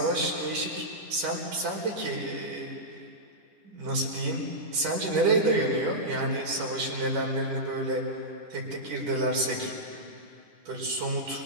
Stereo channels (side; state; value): left; late; 10 ms